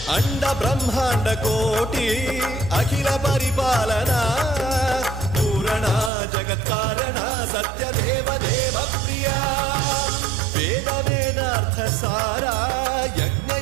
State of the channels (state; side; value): drops out; left; at 6.1 s